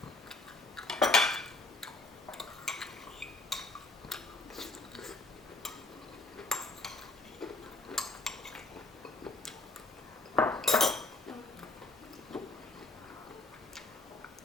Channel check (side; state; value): right; quieter; 3.0 dB